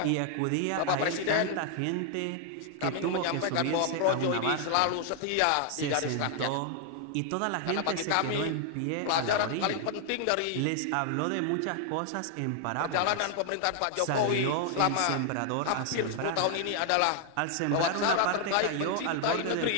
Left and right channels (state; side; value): different; both; correlation 0.00